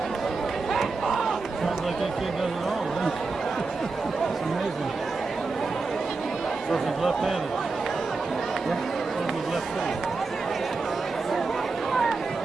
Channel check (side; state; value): left; quieter; 4.0 dB